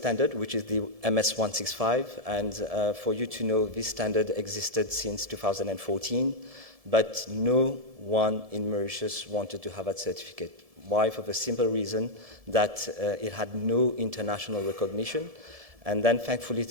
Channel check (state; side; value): late; left; 1.7 ms